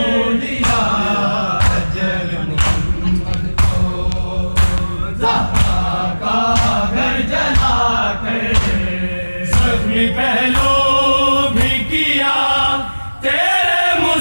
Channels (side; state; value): both; inverted; correlation -1.00